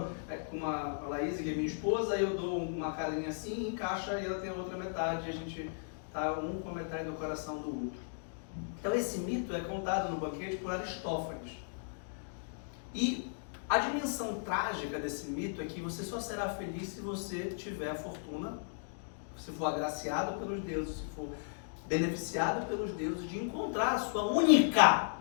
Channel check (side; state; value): right; silent; digital silence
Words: com a Laís, que é minha esposa, e eu dou uma carinha assim, encaixa e ela tem a outra metade, e a gente está um com a metade do coração do outro. Então esse mito é contado no banquete por Aristófanes. E a dimensão trágica desse mito é que você só será feliz se você tiver a fortuna, se for agraciado pelos deuses, se for beneficiado pelos deuses, de encontrar a sua única